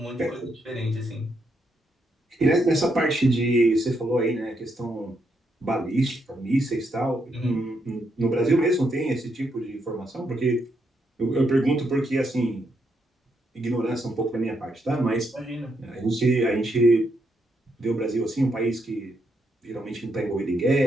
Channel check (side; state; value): both; normal; correlation 0.78